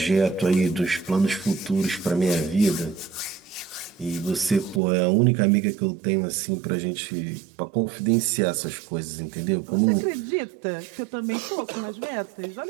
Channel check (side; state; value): left; drops out; at 4.8 s